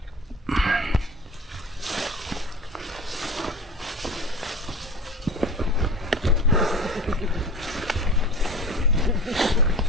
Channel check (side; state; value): both; normal; correlation 0.34